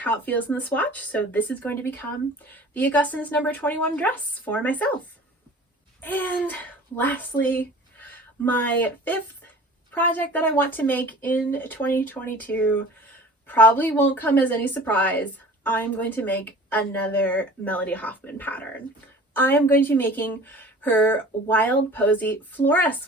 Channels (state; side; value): normal; both; correlation 0.44